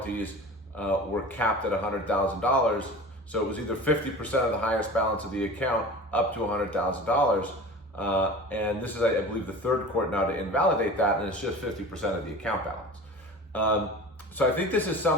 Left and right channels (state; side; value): normal; both; correlation 0.36